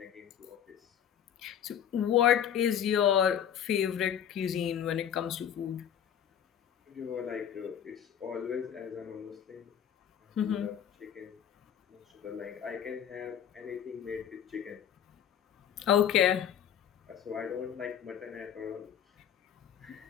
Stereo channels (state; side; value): quieter; right; 9.3 dB